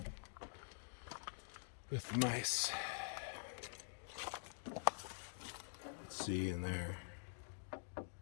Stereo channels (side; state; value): right; silent; digital silence